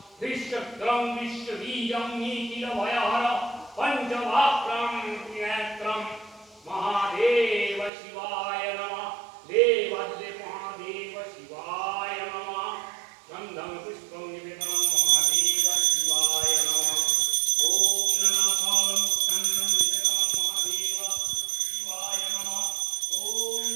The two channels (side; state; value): left; drops out; at 7.9 s